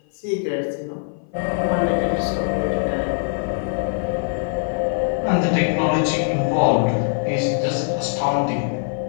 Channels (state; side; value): silent; right; 56 dB below the other